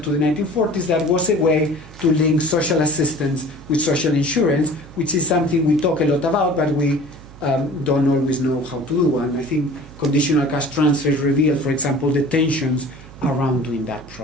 to the 1940s, that was a way to link social assistance with social insurance, which is something we talk a lot about, but we don't always know how to do. And I think conditional cash transfers reveal, for example, the tensions around doing that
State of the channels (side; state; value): right; noise; hum, 20 dB below the sound